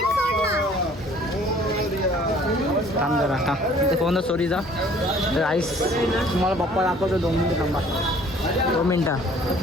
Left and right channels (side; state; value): both; normal; correlation 0.55